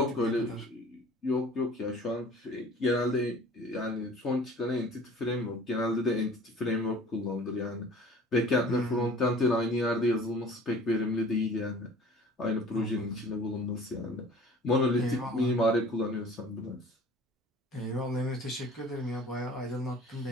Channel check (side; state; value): both; normal; correlation 0.47